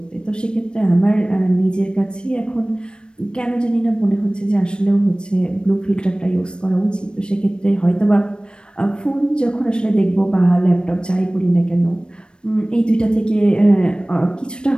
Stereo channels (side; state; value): right; late; 0.053 ms